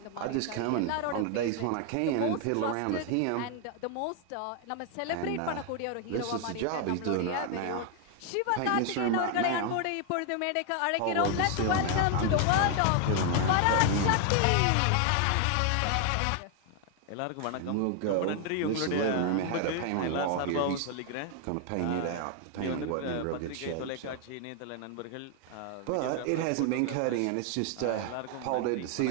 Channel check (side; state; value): both; different; correlation 0.00